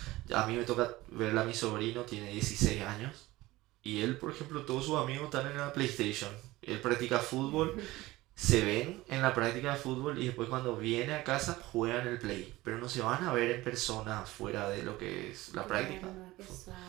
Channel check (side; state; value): left; quieter; 18.7 dB